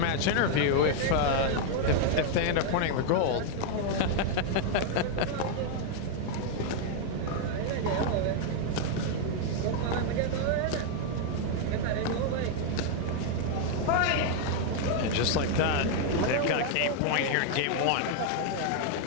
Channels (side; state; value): both; different; correlation 0.00